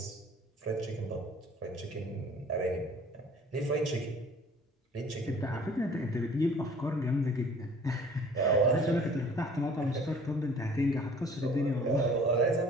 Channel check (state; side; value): normal; both; correlation 0.51